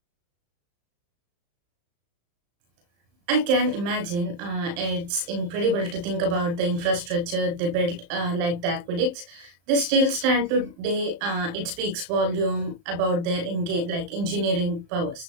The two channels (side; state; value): left; late; 35 ms